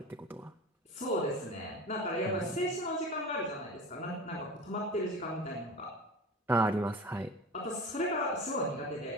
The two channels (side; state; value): both; normal; correlation 0.34